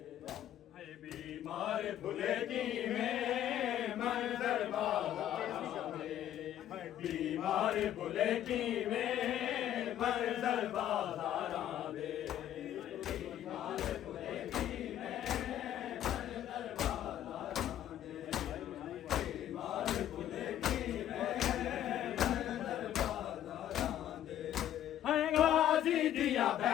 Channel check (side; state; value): right; quieter; 11.5 dB